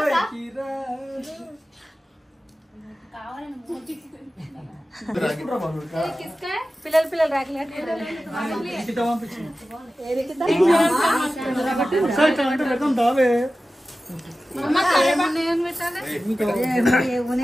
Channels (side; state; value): both; normal; correlation 0.95